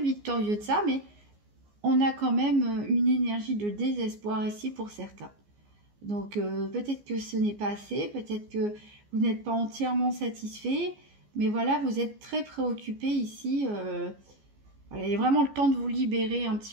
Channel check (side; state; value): left; late; 14 ms